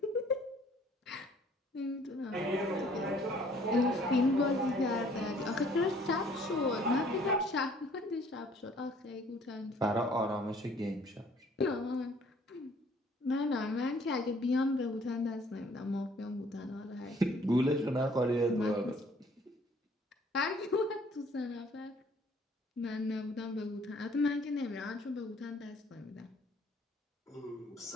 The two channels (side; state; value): both; normal; correlation 0.58